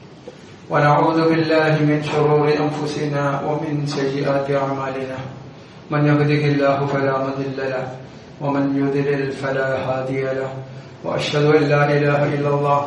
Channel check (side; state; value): both; identical; correlation 1.00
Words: ونعوذ بالله من شرور أنفسنا ومن سيئات أعمالنا من يهده الله فلا مضل له ومن يضلل فلا هادي له وأشهد أن لا إله إلا الله